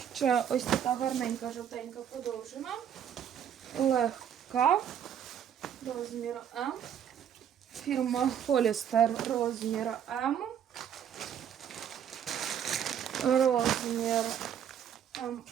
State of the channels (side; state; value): left; quieter; 9.0 dB